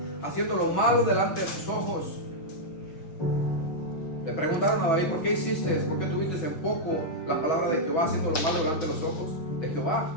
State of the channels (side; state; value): right; late; 6.2 ms